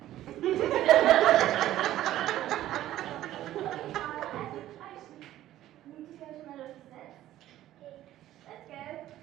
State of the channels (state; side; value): quieter; left; 13.6 dB